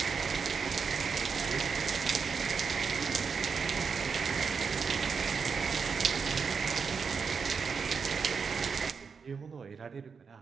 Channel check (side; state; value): left; quieter; 5.7 dB